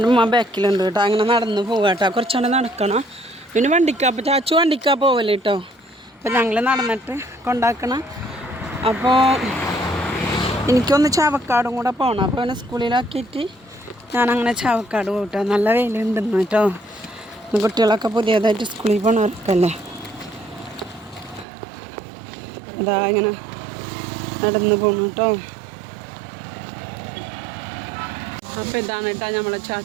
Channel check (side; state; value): left; drops out; at 21.5 s